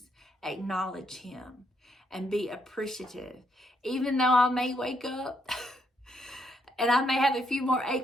acknowledge Him and be appreciative. Even though I may wake up and I may have a few more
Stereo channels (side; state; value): both; normal; correlation 0.75